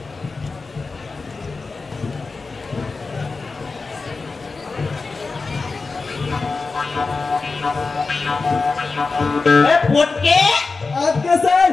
ফটকে আজকে স্যার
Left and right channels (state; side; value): quieter; right; 4.1 dB